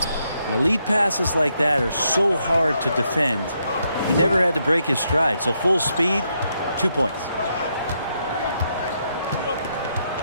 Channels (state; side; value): inverted; both; correlation -0.78